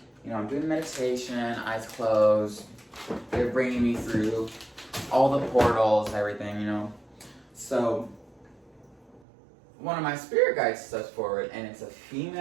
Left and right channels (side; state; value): left; drops out; at 9.2 s